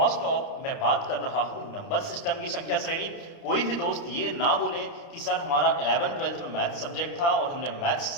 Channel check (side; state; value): right; late; 29 ms